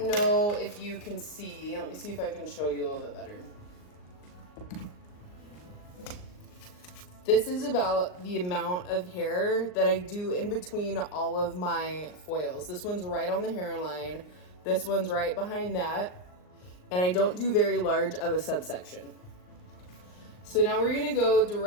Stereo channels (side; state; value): right; late; 39 ms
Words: know if you can see, let me see if I can show you a little bit better. This is about the amount of hair that I do in between all of my foils. This one's right on the hairline. This one's right behind that. And I don't do very large of a subsection. So now we're gonna go